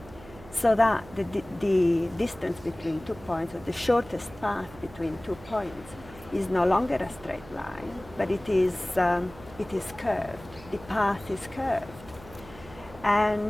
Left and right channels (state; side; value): noise; right; hum, 19 dB below the sound